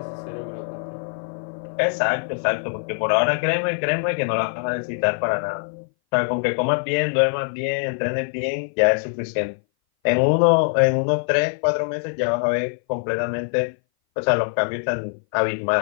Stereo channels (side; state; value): right; silent; 59 dB below the other